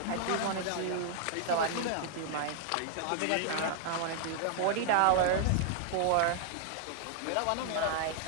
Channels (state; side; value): different; both; correlation 0.00